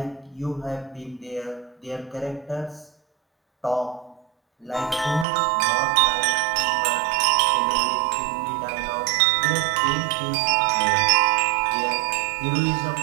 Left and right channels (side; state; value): left; drops out; at 5.2 s